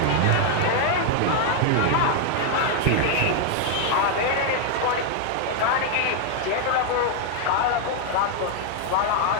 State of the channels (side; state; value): both; different; correlation 0.00